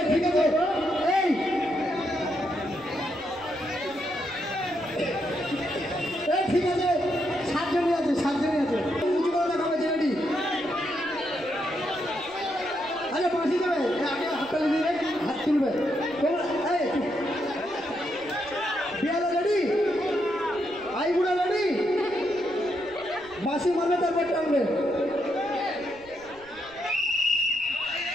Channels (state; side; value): noise; right; rumble, 24 dB below the sound